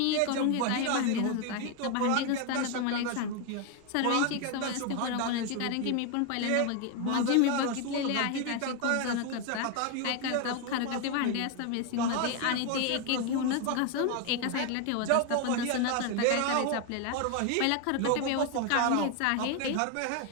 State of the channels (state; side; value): different; both; correlation 0.01